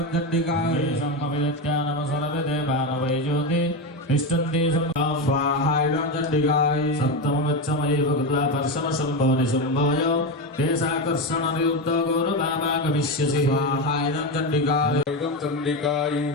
चण्डिकाय सम्मविदत्यानमसरवे देवानवै ज्योति तिष्ठन्ति स्वाहा इदं चण्डिकाय सप्तमगच्छमये भगवता पर्शमशम्भो निशम्भोय तेषाकर्षणनिरुद्धो गौरवामा गमिष्यसि स्वाहा इदं चण्डिकाय इदं चण्डिकाय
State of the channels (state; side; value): normal; both; correlation 0.14